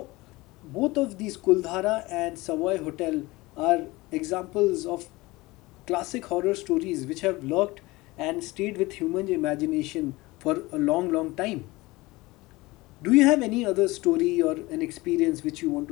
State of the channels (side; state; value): right; quieter; 21.2 dB